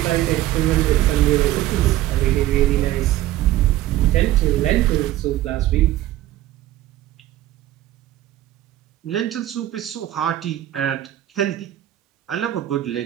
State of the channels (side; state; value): left; quieter; 14.3 dB